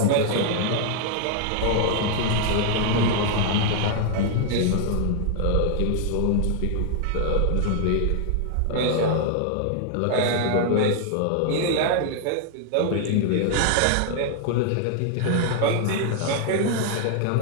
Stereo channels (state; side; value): different; both; correlation 0.00